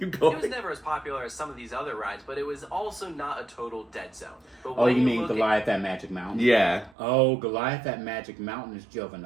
going. It was never as popular as some of these other rides, but it was also not a total dead zone. But oh, you mean Goliath at Magic Mountain? Yeah. Oh, Goliath at Magic Mountain is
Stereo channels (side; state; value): left; drops out; at 7.0 s